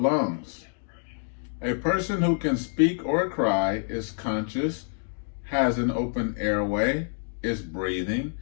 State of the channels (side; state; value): right; silent; digital silence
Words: A person who can speak or cry is conscious, has an open airway, is breathing,